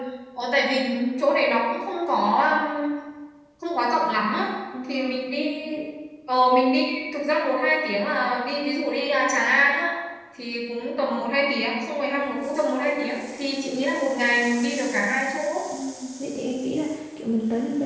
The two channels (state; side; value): identical; both; correlation 1.00